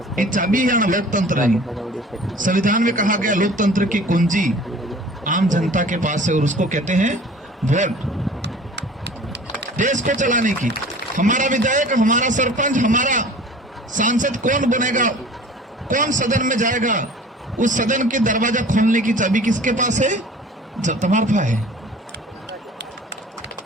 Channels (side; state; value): both; normal; correlation 0.45